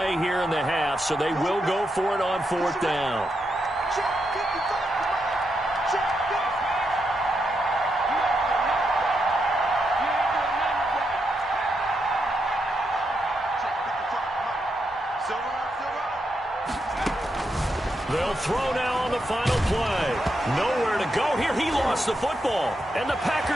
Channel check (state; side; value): normal; both; correlation 0.83